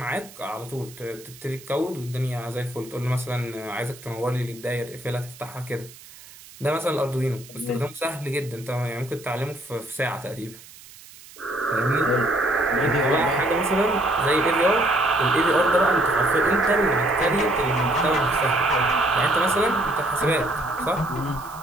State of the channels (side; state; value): right; noise; hiss, 20 dB below the sound